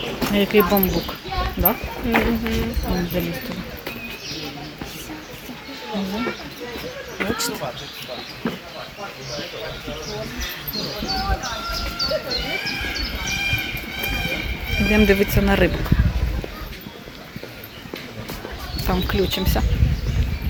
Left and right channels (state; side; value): identical; both; correlation 1.00